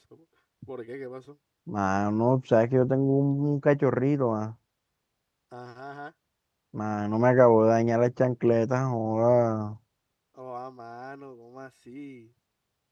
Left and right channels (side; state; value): both; identical; correlation 1.00